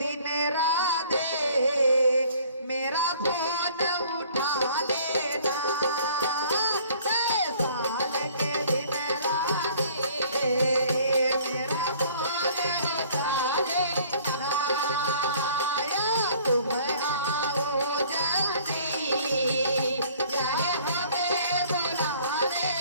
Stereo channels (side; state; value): both; inverted; correlation -0.54